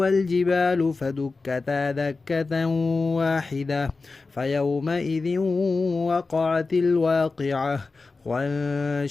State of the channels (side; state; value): right; quieter; 3.9 dB